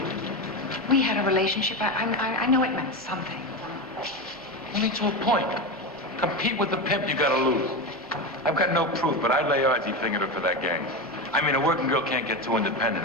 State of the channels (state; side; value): normal; both; correlation 0.18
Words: We had a relationship. I know it meant something. Only to a point. Compete with the pimp, you gotta lose. I've got no proof, but I'd lay odds he fingered her for that gang. I mean, a working girl can't get too